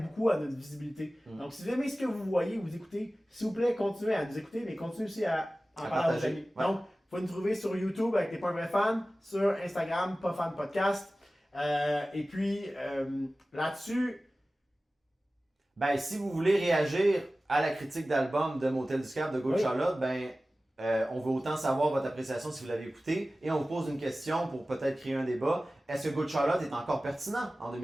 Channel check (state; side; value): normal; both; correlation 0.96